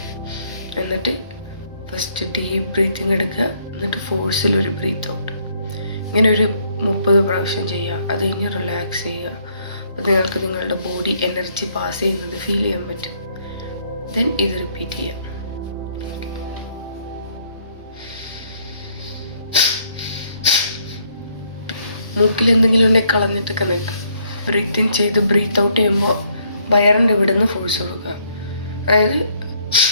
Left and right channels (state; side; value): inverted; both; correlation -0.68